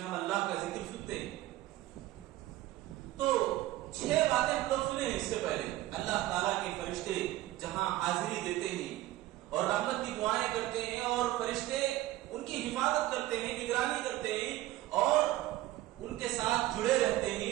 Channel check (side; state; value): left; quieter; 16.1 dB